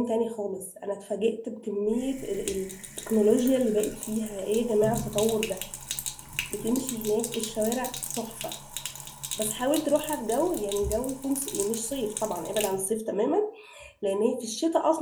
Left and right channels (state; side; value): identical; both; correlation 1.00